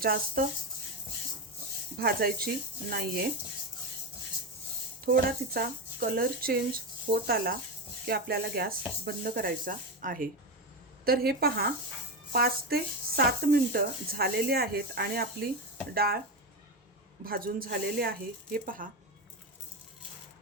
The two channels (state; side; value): normal; both; correlation 0.15